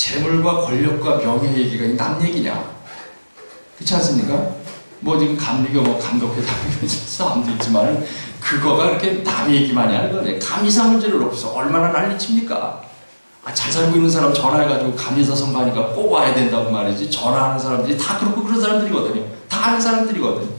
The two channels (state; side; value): inverted; both; correlation -1.00